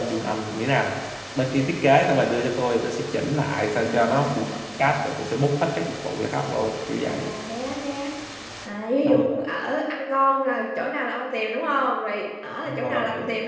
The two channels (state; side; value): identical; both; correlation 1.00